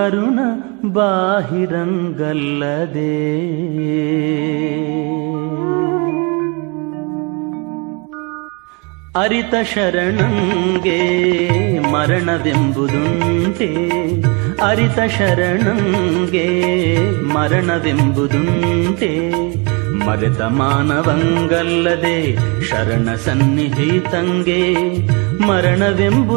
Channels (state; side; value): quieter; left; 31.4 dB